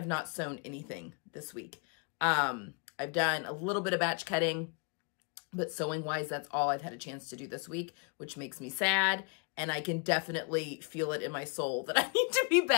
not sewn anything this week. I've done a little bit of batch cutting, but sewing wise, that's all I've had a chance to do this week, which makes me sad. And I can definitely feel it in my soul that I need to be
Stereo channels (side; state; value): right; quieter; 34.9 dB